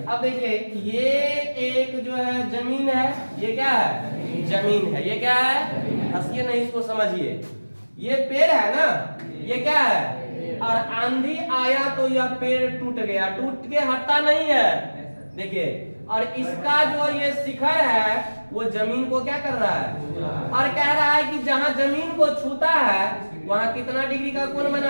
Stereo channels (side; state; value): both; inverted; correlation -1.00